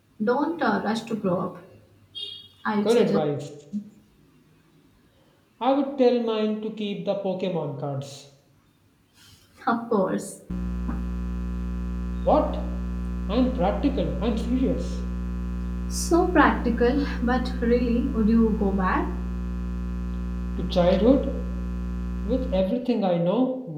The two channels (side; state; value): both; identical; correlation 1.00